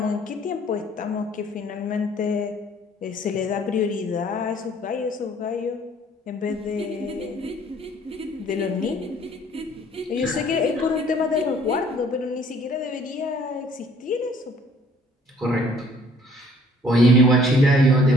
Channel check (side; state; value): both; normal; correlation 0.58